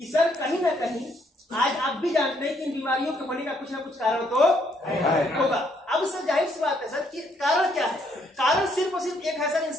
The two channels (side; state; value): both; normal; correlation 0.70